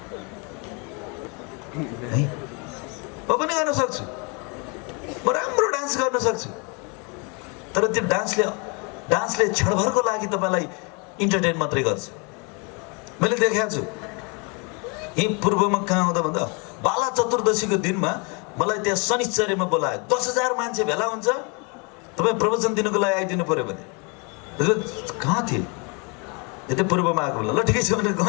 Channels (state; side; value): quieter; right; 32.6 dB